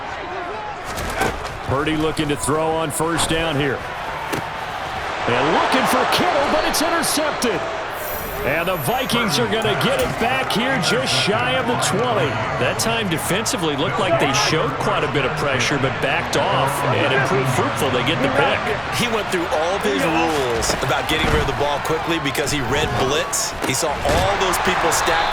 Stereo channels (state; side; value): identical; both; correlation 1.00